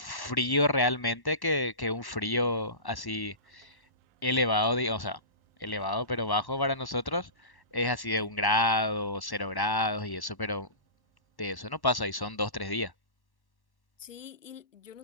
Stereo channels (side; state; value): right; late; 1.0 ms